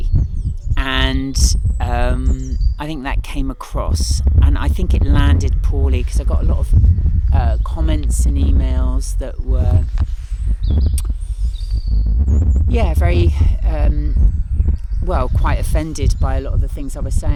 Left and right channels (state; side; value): identical; both; correlation 1.00